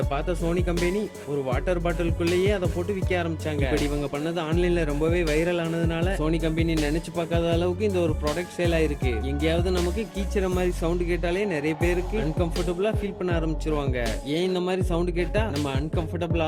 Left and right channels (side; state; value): both; identical; correlation 1.00